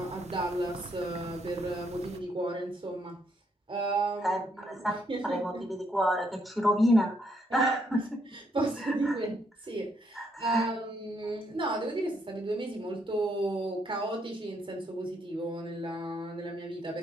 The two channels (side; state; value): both; normal; correlation 0.74